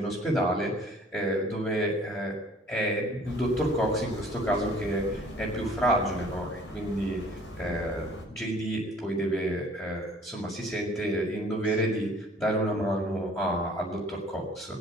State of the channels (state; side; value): normal; both; correlation 0.53